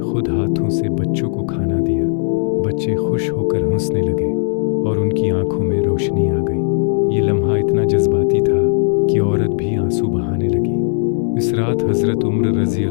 हाथों से बच्चों को खाना दिया। बच्चे खुश होकर हंसने लगे और उनकी आंखों में रोशनी आ गई। ये लम्हा इतना जज्बाती था कि औरत भी आंसू बहाने लगी। इस रात हज़रत उमर रज़ी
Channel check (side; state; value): right; silent; digital silence